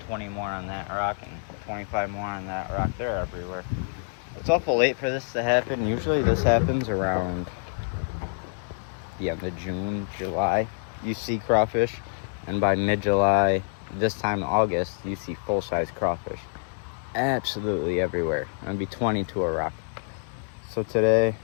20 more on that rock, and 25 more on that rock. They're everywhere. It's awful late for this to happen. Usually this happens around the end of June, July. You see crawfish, and by mid-July, this time in August, you see full-size crawfish. Absolutely everywhere. It'll be 20 to a rock. So today,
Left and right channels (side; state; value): right; silent; digital silence